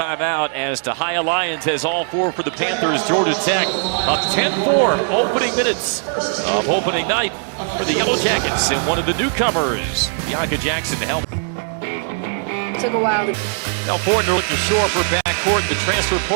as Tahia Lyons has all 4 for the Panthers. Georgia Tech up 10-4, opening minutes of opening night for the Yellow Jackets. And one of the newcomers, Bianca Jackson, to help. Took a while to... Now Fortner looked ashore for backcourt in the transfer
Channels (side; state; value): left; silent; 66 dB below the other